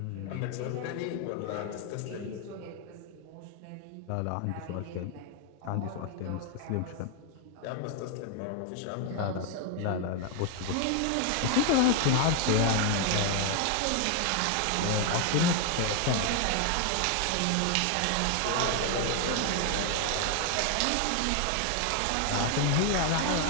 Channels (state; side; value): different; both; correlation 0.01